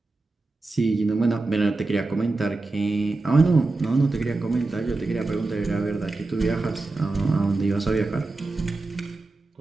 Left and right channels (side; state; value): left; quieter; 3.3 dB